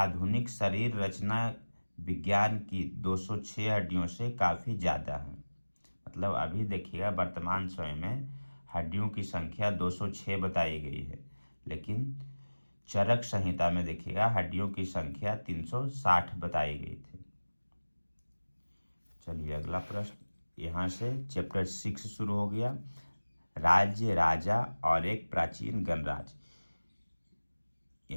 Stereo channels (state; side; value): inverted; both; correlation -1.00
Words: शरीर रचना विज्ञान की 206 हड्डियों से काफ़ी ज़्यादा है। मतलब अभी देखिएगा वर्तमान समय में हड्डियों की संख्या 206 बताई गई है, लेकिन चरक संहिता में देखिएगा हड्डियों की संख्या 360 बताई गई थी। चलिए अगला प्रश्न, यहाँ से चैप्टर 6 शुरू हो गया, राज्य, राजा और एक प्राचीन गणराज्य।